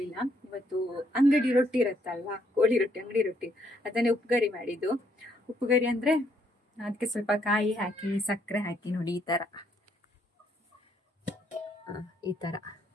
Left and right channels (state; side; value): normal; both; correlation 0.71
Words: ಇವತ್ತು ಅಂಗಡಿ ರೊಟ್ಟಿ ಇರತ್ತಲ್ವಾ, ಕೋಳಿ ರೊಟ್ಟಿ, ಅಂಗಡಿ ರೊಟ್ಟಿ, ಅದನ್ನೇ ಉಪ್ಪುಗರಿ ಮಾಡಿದ್ದು. ಉಪ್ಪುಗರಿ ಅಂದ್ರೆ ಅದಕ್ಕೆ ಸ್ವಲ್ಪ ಕಾಯಿ ಹಾಕಿ ಸಕ್ಕರೆ ಹಾಕಿ ನೋಡಿ ಈ ತರ